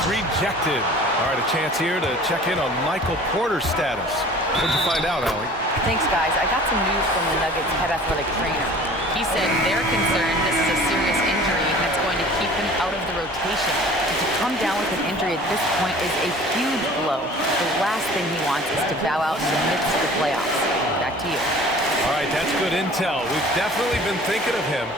rejected. All right, a chance here to check in on Michael Porter's status. What'd you find out, Allie? Thanks, guys. I got some news from the Nuggets head athletic trainer. He said they're concerned this is a serious injury that's going to keep him out of the rotation. And to come down with an injury at this point is a huge blow. The last thing he wants is to bow out in the midst of the playoffs. Back to you. All right, that's good intel. We've definitely been thinking of him,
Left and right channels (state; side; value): normal; both; correlation 0.46